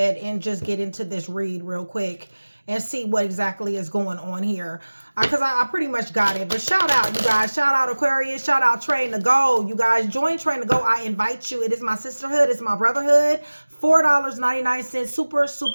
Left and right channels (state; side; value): inverted; both; correlation -1.00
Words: and just get into this read real quick and see what exactly is going on here. Because I pretty much got it. But shout out, you guys. Shout out Aquarius. Shout out Train to Go. You guys, join Train to Go. I invite you. It is my sisterhood. It's my brotherhood. $4.99. Super,